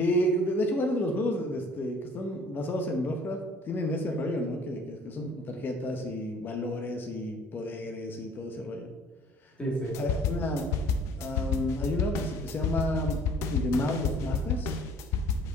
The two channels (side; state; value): both; normal; correlation 0.54